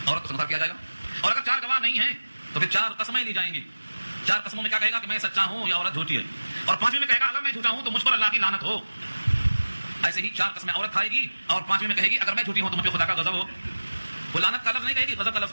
عورت کو سنسار کیا جائے گا. اور اگر 4 گواہ نہیں ہیں تو پھر 4 قسمیں لی جائیں گی. 4 قسموں میں کیا کہے گا کہ میں سچا ہوں یا عورت جھوٹی ہے, اور 5ویں میں کہے گا اگر میں جھوٹا ہوں تو مجھ پر اللہ کی لعنت ہو. ایسے ہی 4 قسمیں عورت کھائے گی اور 5ویں میں کہے گی اگر میں جھوٹی ہوں تو مجھ پہ خدا کا غضب ہو. وہ لعنت کا لفظ نہیں کہے گی, غضب کا لفظ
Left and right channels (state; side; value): inverted; both; correlation -1.00